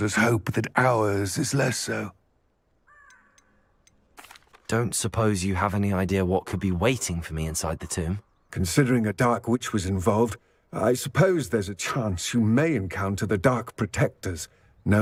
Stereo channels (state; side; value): identical; both; correlation 1.00